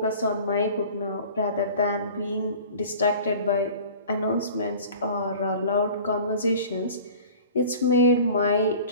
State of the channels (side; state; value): both; inverted; correlation -0.43